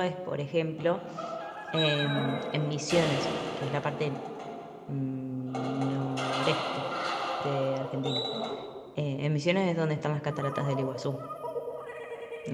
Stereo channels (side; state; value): both; identical; correlation 1.00